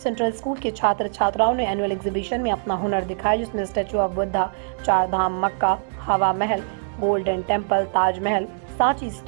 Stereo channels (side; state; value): left; silent; digital silence